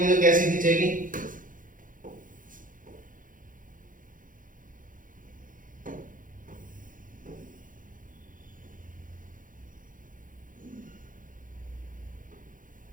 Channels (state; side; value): late; left; 0.39 ms